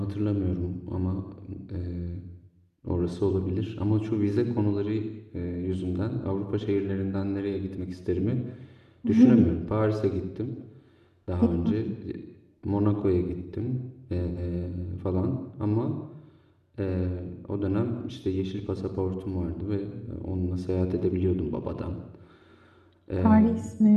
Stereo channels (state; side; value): identical; both; correlation 1.00